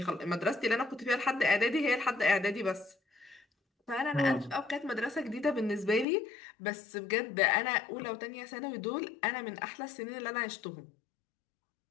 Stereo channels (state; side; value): drops out; right; at 6.1 s